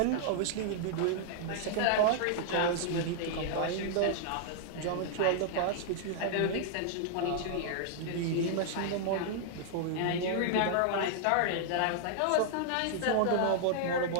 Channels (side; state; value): both; different; correlation -0.01